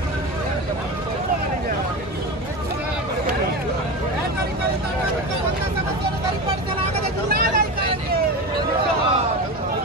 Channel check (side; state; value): both; normal; correlation 0.24